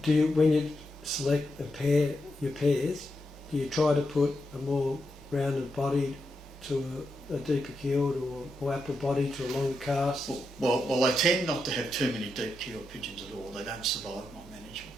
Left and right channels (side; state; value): both; normal; correlation 0.85